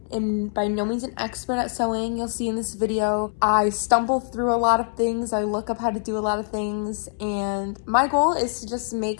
am by no means an expert at sewing. You'll see in this video, I stumble through a lot of things. I look up how to do a lot of things. And my goal is to just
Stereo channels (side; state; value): right; silent; 62 dB below the other